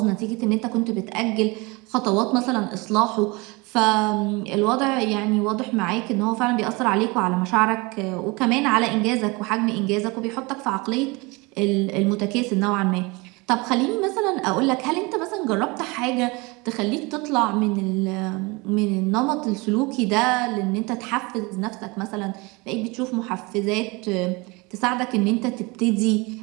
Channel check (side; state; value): left; quieter; 25.9 dB